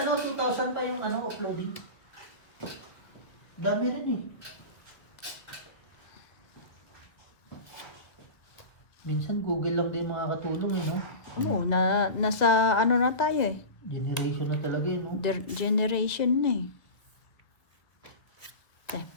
ano, 2,000 pa yung ano, uploading. Dami rin eh. Minsan Google lang din makakatulong eh, no? Oo, nasa ano na tayo eh. Generation na talaga eh, no? Generation na eh.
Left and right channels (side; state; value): right; late; 1.5 ms